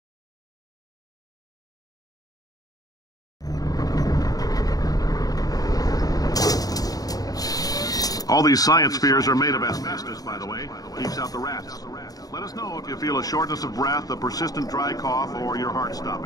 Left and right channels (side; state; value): right; late; 0.18 ms